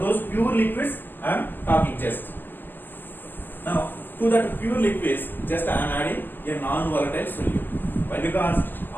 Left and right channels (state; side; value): late; right; 0.095 ms